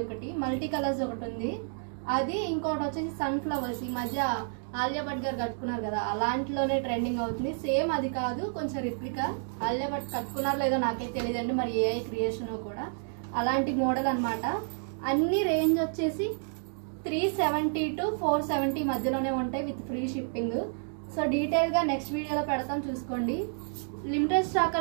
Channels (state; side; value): silent; left; digital silence